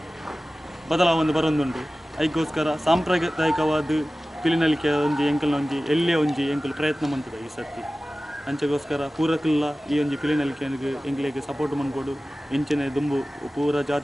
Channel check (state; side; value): normal; both; correlation 0.96